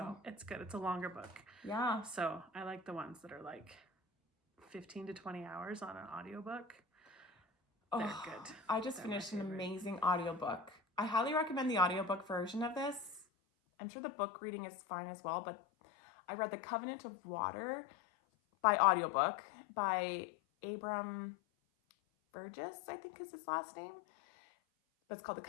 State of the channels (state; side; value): drops out; right; at 13.2 s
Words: it's good. It's a longer book. Yeah. So I like the ones that are like 15 to 20 hours on an audiobook. They're good. I just finished an amazing audiobook. I highly recommend the audiobook version of this. I'm sure the book reading is fine as well, but I read The Covenant of Water by audiobook by Abram Burgess, I think is his last name. But it's called The